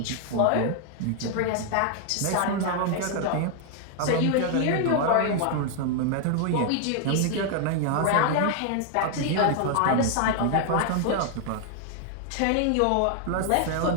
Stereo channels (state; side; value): different; both; correlation 0.00